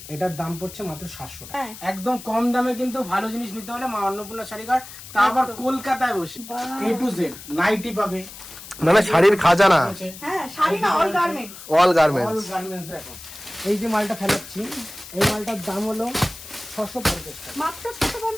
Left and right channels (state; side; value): noise; left; hiss, 15 dB below the sound